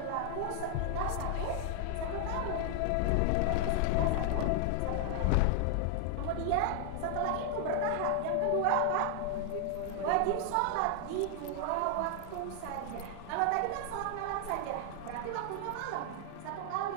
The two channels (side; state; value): both; different; correlation 0.00